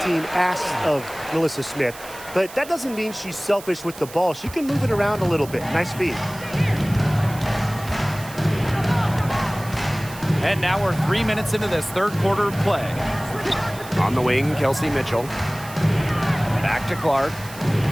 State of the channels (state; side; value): noise; right; hiss, 16 dB below the sound